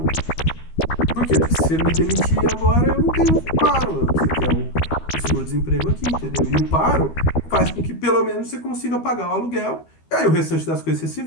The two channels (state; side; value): late; right; 12 ms